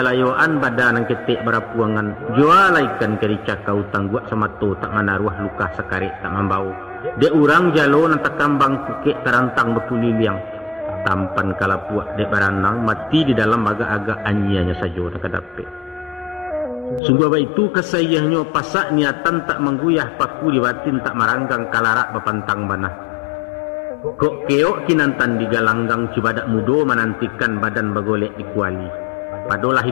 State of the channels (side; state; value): right; drops out; at 17.0 s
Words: badan nang ketek berapuangan. Jualaikan kericak kau tangguak sama tu tak manaruah luka sekarik tak membau. De urang jalo nang tak kambang kukek terantang berpuliliang. Tampan kalapuak dek baranang mati di dalam agak-agak anyianya saja nak kadape. Sungguh apa itu kesayahnya pasak niatan tak mengguyah paku di batin tak maranggang kalarak bapantang banah. Kok keok kinantan di galanggang cibadak mudo menantikan badan bagolek di kuali. Padolah